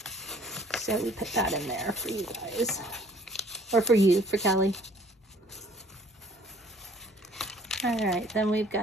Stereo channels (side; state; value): both; normal; correlation 0.57